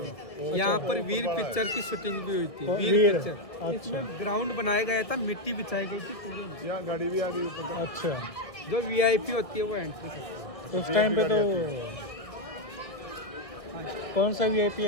यहाँ पर वीर पिक्चर की शूटिंग भी हुई थी। वीर पिक्चर। इसमें ग्राउंड बनाया गया था, मिट्टी बिछाई गई थी पूरी। यहाँ गाड़ी भी आ गई ऊपर। अच्छा, जो वीआईपी होती है वो एंट्री करती है। उस टाइम पे तो कौन सा वीआईपी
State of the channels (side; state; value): right; late; 1.5 ms